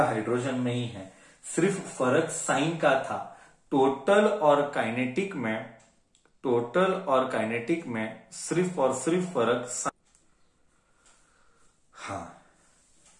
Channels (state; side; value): identical; both; correlation 1.00